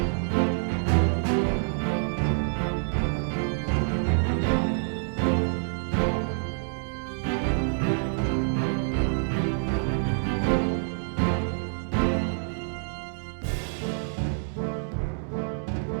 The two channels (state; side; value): silent; left; digital silence